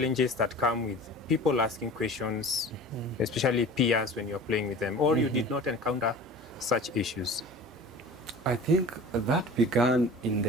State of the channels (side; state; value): both; normal; correlation 0.40